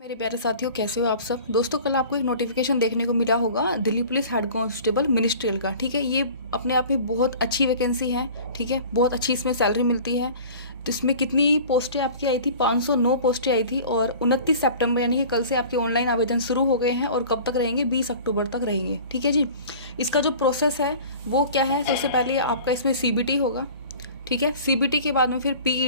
मेरे प्यारे साथियों, कैसे हो आप सब। दोस्तों, कल आपको एक नोटिफिकेशन देखने को मिला होगा Delhi police head constable ministerial का। ठीक है, ये अपने आप में बहुत अच्छी वैकेंसी है। ठीक है, बहुत अच्छी इसमें सैलरी मिलती है। तो इसमें कितनी पोस्टें आपकी आई थी? 509 पोस्टें आई थी और 29 सितंबर यानी कि कल से आपके ऑनलाइन आवेदन शुरू हो गए हैं और कब तक रहेंगे? 20 अक्टूबर तक रहेंगे। ठीक है जी। इसका जो प्रोसेस है वो क्या है? सबसे पहले आपका इसमें CBT होगा। ठीक है, CBT के बाद में फिर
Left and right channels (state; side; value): inverted; both; correlation -0.43